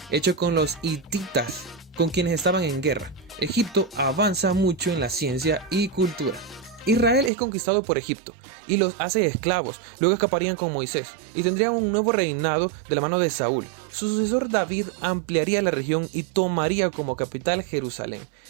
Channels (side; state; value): left; drops out; at 7.3 s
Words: hecho con los hititas, con quienes estaban en guerra. Egipto avanza mucho en la ciencia y cultura. Israel es conquistado por Egipto y los hace esclavos, luego escaparían con Moisés y tendrían un nuevo reinado de la mano de Saúl. Su sucesor David ampliaría la región y tomaría como capital Jerusalén.